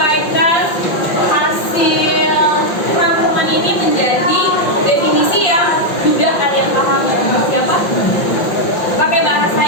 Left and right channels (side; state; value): right; late; 5.7 ms